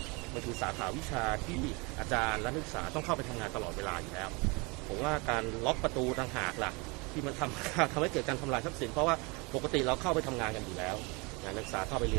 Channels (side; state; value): left; quieter; 28.0 dB